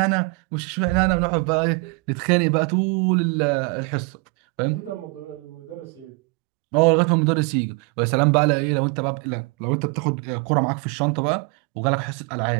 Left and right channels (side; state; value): left; quieter; 29.4 dB